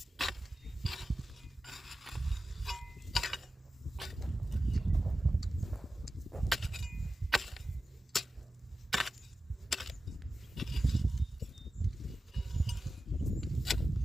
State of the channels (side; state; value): both; normal; correlation 0.93